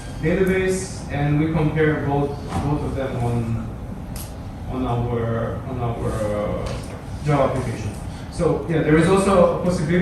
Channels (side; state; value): both; identical; correlation 1.00